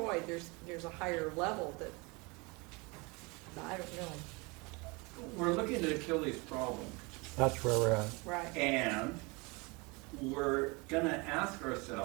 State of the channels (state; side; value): quieter; left; 27.6 dB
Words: There's a higher level that, I don't know. We're looking at Achilles' problem, That's where we're at. Right. and we're gonna ask